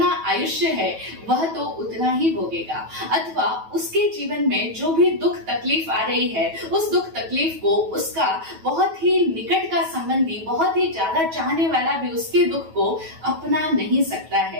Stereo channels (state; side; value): late; left; 9.2 ms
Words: आयुष्य है वह तो उतना ही भोगेगा। अथवा उसके जीवन में जो भी दुख तकलीफ आ रही है, उस दुख तकलीफ को उसका बहुत ही निकट का संबंधी, बहुत ही ज्यादा चाहने वाला भी उसके दुख को अपना नहीं सकता